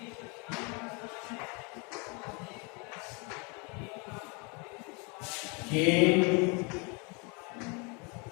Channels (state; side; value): quieter; right; 31.6 dB